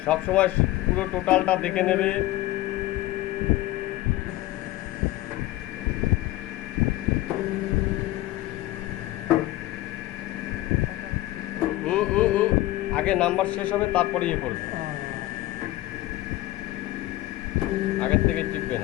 সব সময় পুরো টোটালটা দেখে নেবে। আগে নাম্বার শেষ হবে তারপরে ইয়ে করবে, আগের থেকে চিপবে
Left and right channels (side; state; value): right; quieter; 16.7 dB